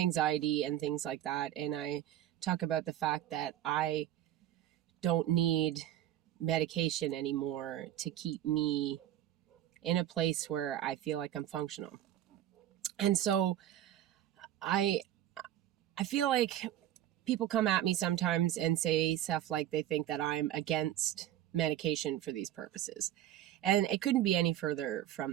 and things like that, and I talk about the fact that I don't need medication anymore to keep me in a place where I feel like I'm functional. And so I I feel like people come at me sometimes and say stuff like they think that I'm against medication for these purposes. And it couldn't be any further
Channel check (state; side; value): quieter; left; 12.3 dB